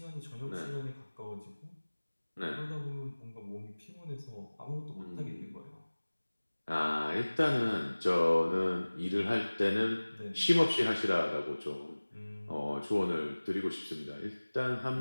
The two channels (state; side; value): inverted; both; correlation -1.00